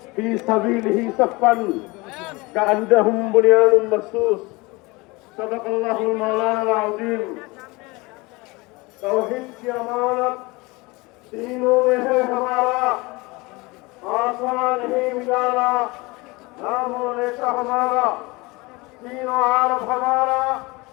في سبيله صفا كأنهم بنيان مرصوص. صدق الله المولانا العظيم. तौहीद की अमानत तीनों में है हमारा, आसमान ही मिलाना नामों नेशा हमारा, तीनों आरब हमारा,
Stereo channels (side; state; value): right; quieter; 24.1 dB